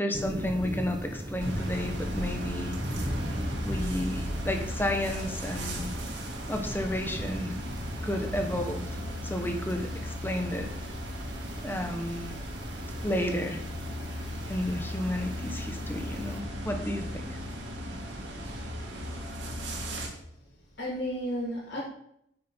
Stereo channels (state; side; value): normal; both; correlation 0.75